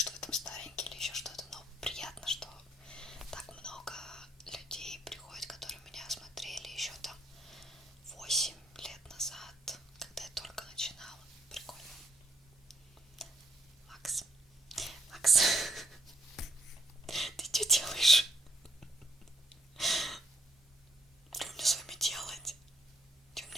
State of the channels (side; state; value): both; normal; correlation 0.71